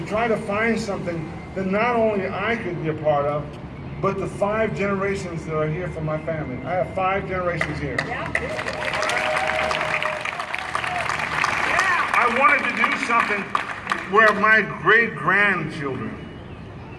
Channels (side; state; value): both; identical; correlation 1.00